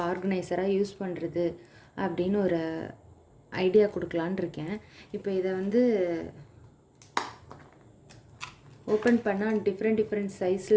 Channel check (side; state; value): both; identical; correlation 1.00